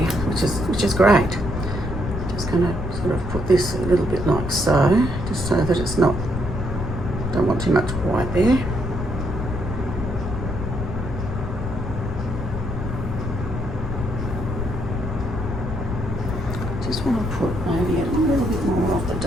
which is great. Just going to sort of put this a little bit like so, just so that it's not, don't want too much white there. Just want to put maybe a little bit more of the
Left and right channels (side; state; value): left; noise; rumble, 4 dB below the sound